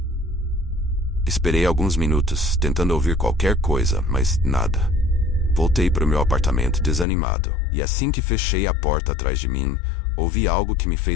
Esperei alguns minutos, tentando ouvir qualquer coisa, mas nada. Voltei para o meu apartamento desanimado, e assim que fechei a porta atrás de mim, ouvi algo que me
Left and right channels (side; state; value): right; drops out; at 7.1 s